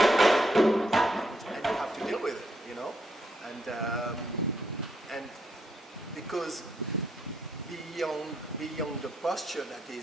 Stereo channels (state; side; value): normal; both; correlation 0.77